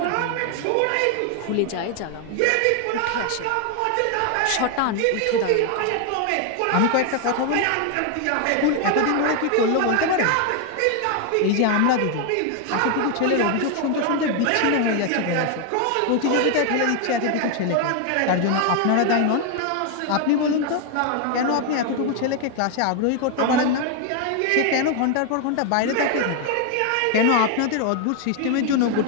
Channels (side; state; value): both; different; correlation 0.01